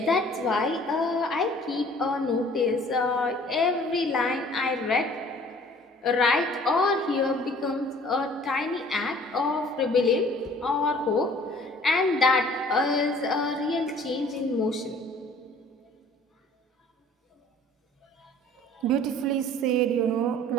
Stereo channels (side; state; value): both; normal; correlation 0.52